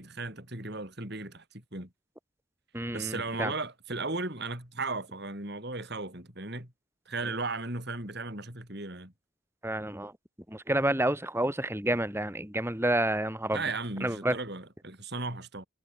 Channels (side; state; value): both; normal; correlation 0.58